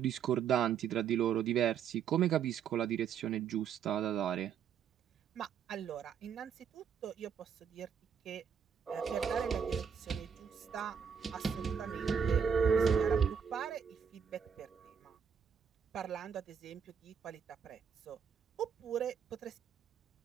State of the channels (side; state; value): left; quieter; 7.5 dB